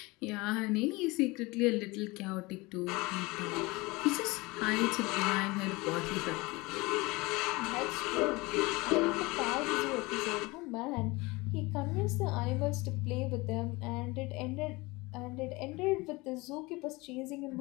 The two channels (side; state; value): right; quieter; 23.4 dB